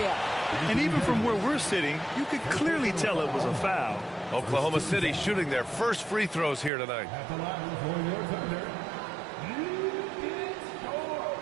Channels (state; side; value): drops out; left; at 6.7 s